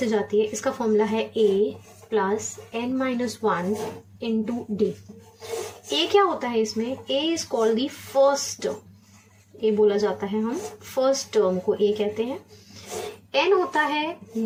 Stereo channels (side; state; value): both; identical; correlation 1.00